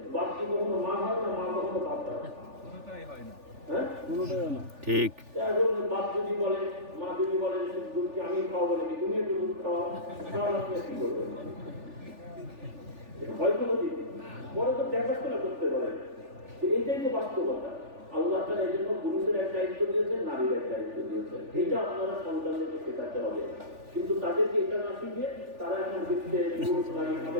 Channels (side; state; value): left; late; 3.4 ms